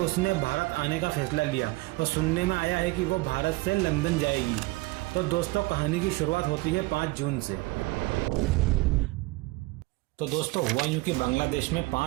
भारत आने का फैसला लिया और सुनने में आया है कि वो भारत से लंदन जाएगी। तो दोस्तों, कहानी की शुरुआत होती है 5 जून से। तो दोस्तों, हुआ यूं कि बांग्लादेश में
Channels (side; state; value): left; quieter; 22.4 dB